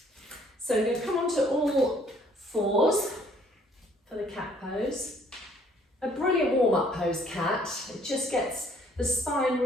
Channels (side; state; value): both; normal; correlation 0.62